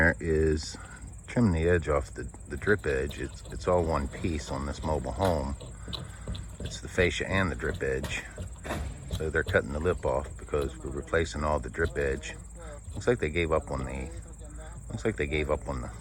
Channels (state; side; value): identical; both; correlation 1.00